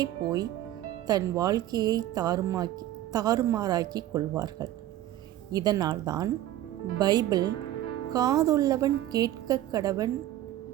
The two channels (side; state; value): left; quieter; 13.5 dB